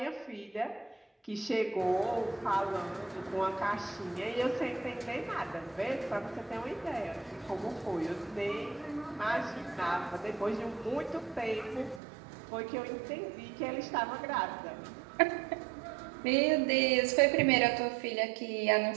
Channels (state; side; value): drops out; left; at 12.0 s